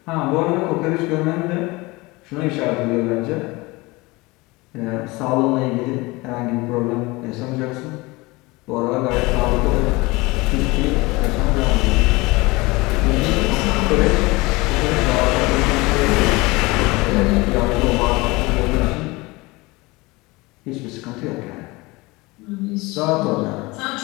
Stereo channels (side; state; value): right; quieter; 23.1 dB